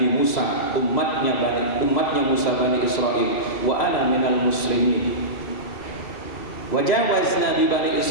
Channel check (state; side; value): late; right; 3.1 ms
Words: Musa, umatnya Musa Bani Israel, wa ana minal muslimin. Wajawazna bi Bani